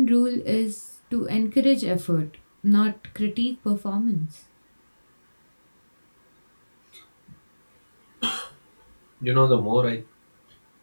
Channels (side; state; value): both; inverted; correlation -1.00